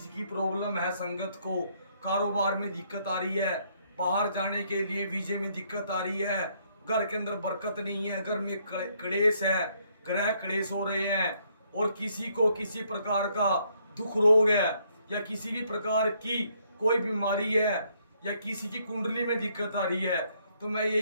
की प्रॉब्लम है, संगत को कारोबार में दिक्कत आ रही है, बाहर जाने के लिए वीजे में दिक्कत आ रही है, घर के अंदर बरकत नहीं है, घर में क्लेश है, ग्रह क्लेश हो रहे हैं, और किसी को किसी प्रकार का दुख रोग है, या किसी भी प्रकार की कोई बीमारी है, या किसी की कुंडली में दिक्कत आ रही है, तो मैं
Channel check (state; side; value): inverted; both; correlation -0.70